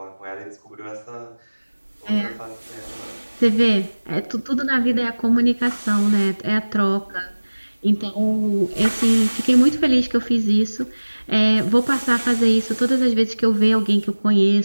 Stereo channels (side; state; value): both; inverted; correlation -1.00